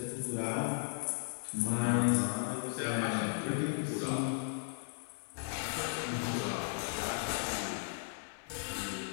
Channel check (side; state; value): right; silent; 54 dB below the other